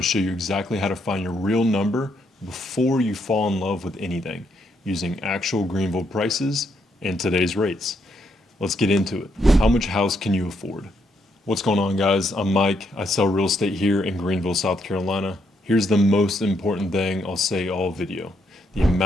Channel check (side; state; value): both; normal; correlation 0.76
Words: show you exactly how to find your real number before you fall in love with anything, using actual Greenville prices and today's rates. Let's get into it. How much house can you afford? What's going on, guys? I'm Mike. I sell real estate here in Greenville, South Carolina. Here's the most important thing I'll say all video. The